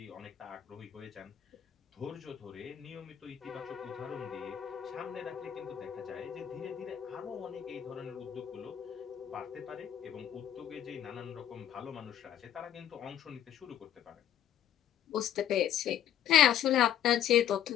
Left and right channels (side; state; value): right; quieter; 10.6 dB